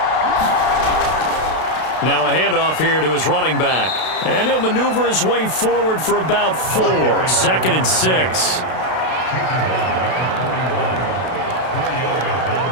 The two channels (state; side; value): late; right; 32 ms